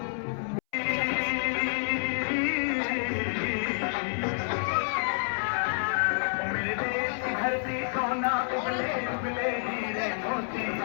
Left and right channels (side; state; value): right; silent; 59 dB below the other